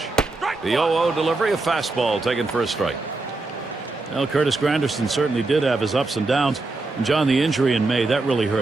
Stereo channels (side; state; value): left; quieter; 3.3 dB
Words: The 0-0 delivery, a fastball taken for a strike. Well, Curtis Granderson certainly did have his ups and downs. And John, the injury in May, that really